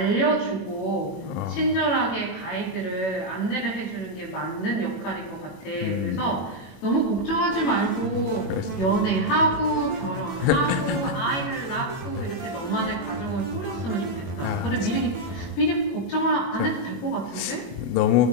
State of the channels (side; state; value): right; late; 21 ms